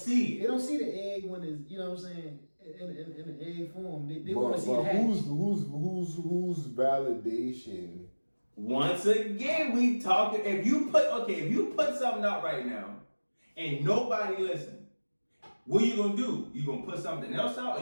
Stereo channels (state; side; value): inverted; both; correlation -1.00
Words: it. They don't see the egg when it's, you know what I'm saying, in the egg form. They want to see it hatch. Who's validation? Once again, we talking. If you put something out right now, and nobody listen, what you gonna do? You gonna put something else out,